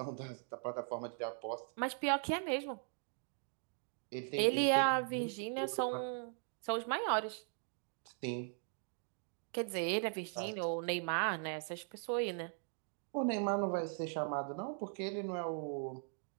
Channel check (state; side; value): silent; left; 51 dB below the other